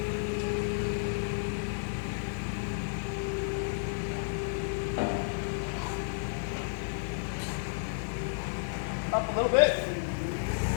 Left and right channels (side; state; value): right; silent; 56 dB below the other